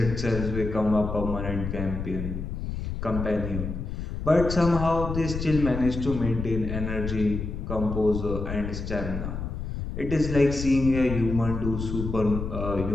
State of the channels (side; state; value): left; noise; rumble, 5 dB below the sound